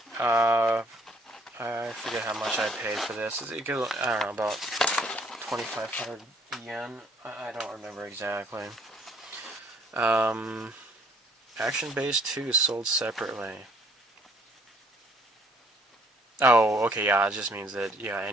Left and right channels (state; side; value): normal; both; correlation 0.61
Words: I forget how much I paid for this. I don't know, about 2,500 yen. I don't remember exactly. Action Base 2 sold separately. Oh, okay, yeah, it just means that, yeah,